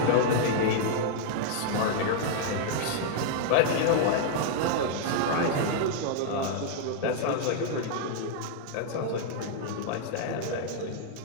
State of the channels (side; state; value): both; different; correlation -0.01